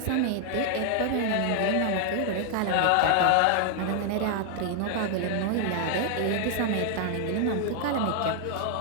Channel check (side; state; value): both; different; correlation 0.00